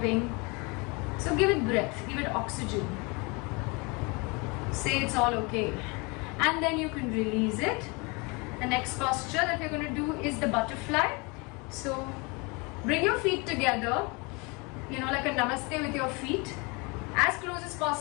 So give it breath, give it oxygen. Say it's all okay. And then you can release it. The next posture that we're going to do is the butterfly. So bring your feet together, like a namaste with your feet, as close as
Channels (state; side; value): quieter; right; 28.7 dB